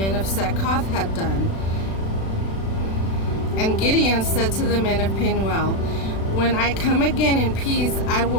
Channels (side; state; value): right; late; 36 ms